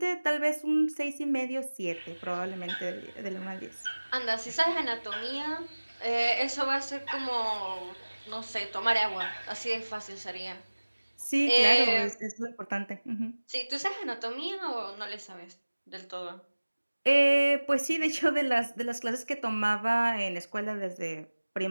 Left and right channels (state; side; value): inverted; both; correlation -1.00